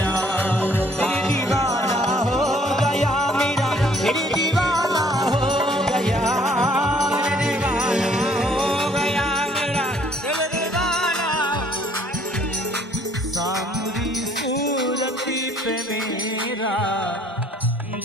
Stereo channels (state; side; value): normal; both; correlation 0.61